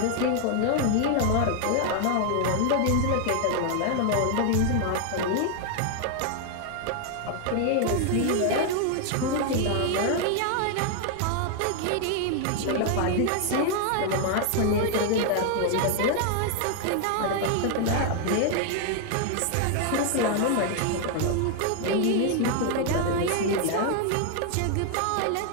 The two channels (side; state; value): both; different; correlation 0.00